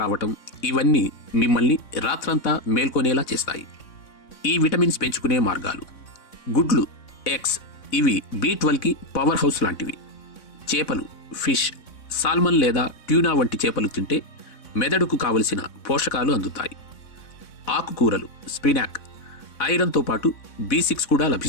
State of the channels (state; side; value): late; right; 3.6 ms